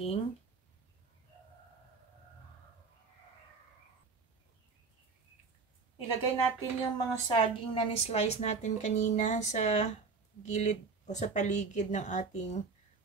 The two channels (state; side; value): quieter; left; 4.6 dB